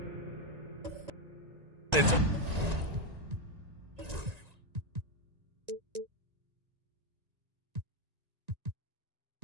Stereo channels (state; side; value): late; left; 1.9 ms